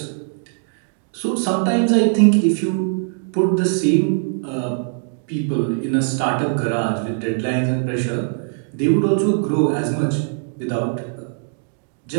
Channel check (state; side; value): silent; left; digital silence